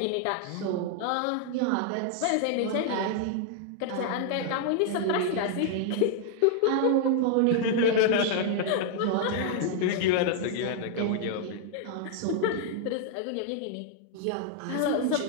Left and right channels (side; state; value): both; different; correlation 0.00